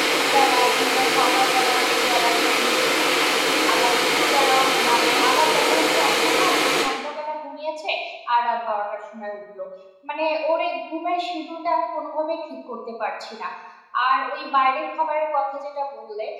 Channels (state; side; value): identical; both; correlation 1.00